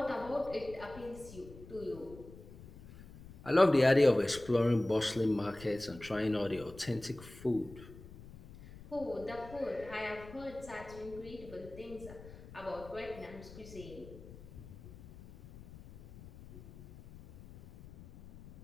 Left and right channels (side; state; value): left; noise; rumble, 17 dB below the sound